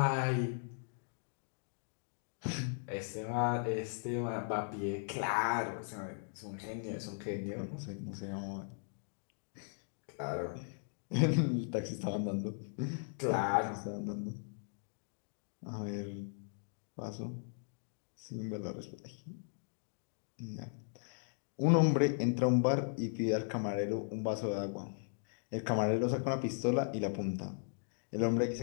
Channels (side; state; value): right; silent; digital silence